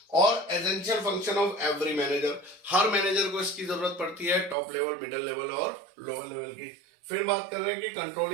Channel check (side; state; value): left; drops out; at 4.5 s